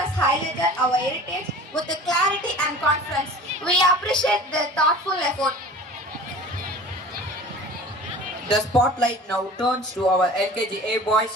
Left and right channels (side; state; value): both; normal; correlation 0.41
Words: highlighted our heritage with clarity and confidence. We appreciate their thoughtful effort. The spotlight now turns to our LKGA boys